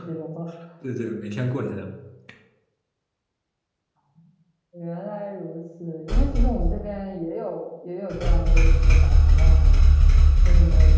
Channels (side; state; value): both; identical; correlation 1.00